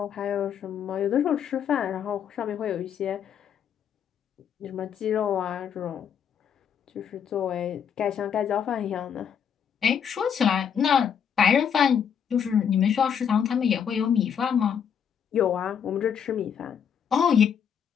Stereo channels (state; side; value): quieter; right; 7.9 dB